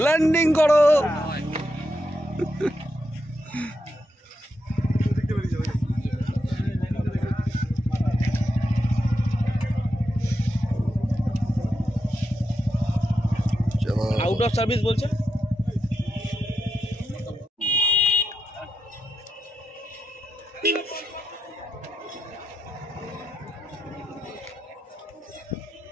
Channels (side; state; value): both; normal; correlation 0.85